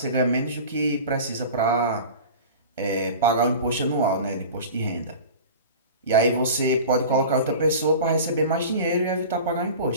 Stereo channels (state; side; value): inverted; both; correlation -0.35